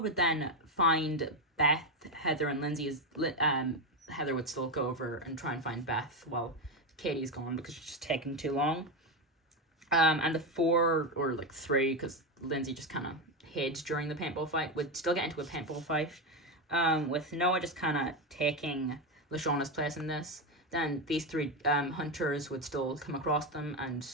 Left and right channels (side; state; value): both; normal; correlation 0.11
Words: would then find Beth, Heather, and Lindsay. Heather would still go over and try and find Beth while Katie's gone because she's just taking too long. And the four, or like three, because Lindsay just kind of hid during the paintball fight, would still get into a paintball fight. With Noah just kind of taking Lashauna's place in this. Then these three hunters would still come across them, and